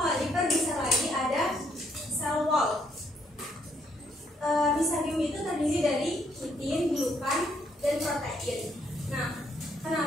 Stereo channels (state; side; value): normal; both; correlation 0.71